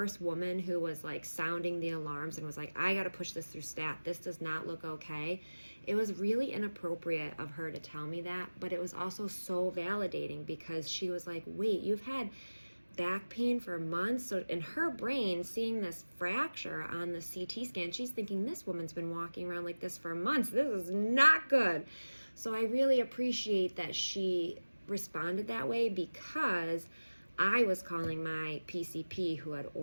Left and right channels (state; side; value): inverted; both; correlation -1.00